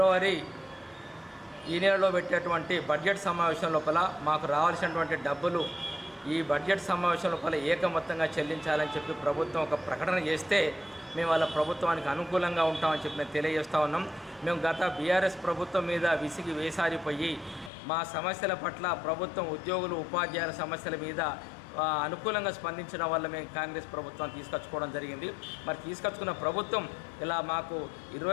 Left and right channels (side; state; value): right; drops out; at 17.7 s